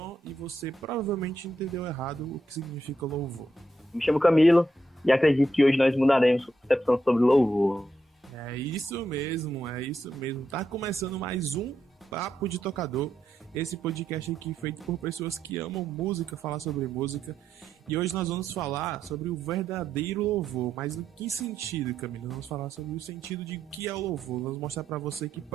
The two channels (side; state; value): both; normal; correlation 0.81